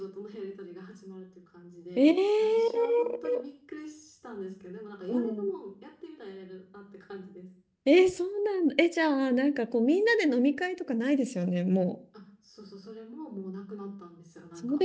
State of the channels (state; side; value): identical; both; correlation 1.00